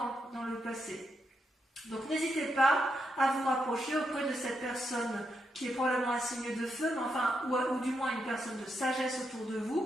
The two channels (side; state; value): both; normal; correlation 0.82